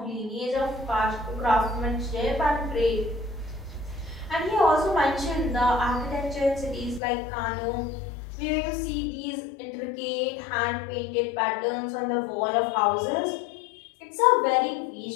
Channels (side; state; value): right; drops out; at 7.0 s